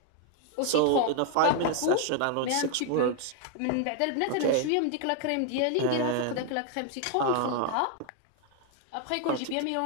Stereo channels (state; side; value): different; both; correlation 0.00